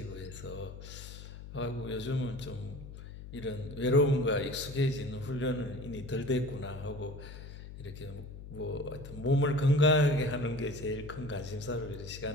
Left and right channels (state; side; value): noise; left; hum, 12 dB below the sound